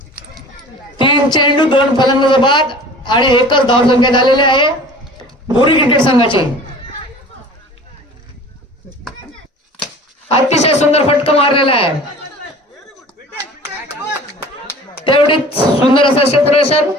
3 चेंडू 2 फलंदाज बाद आणि एकच धाव संख्या झालेली आहे बुरी क्रिकेट संघाची. अतिशय सुंदर फटका मारलेला आहे, तेवढीच सुंदर असं क्षेत्ररक्षण,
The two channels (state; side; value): normal; both; correlation 0.43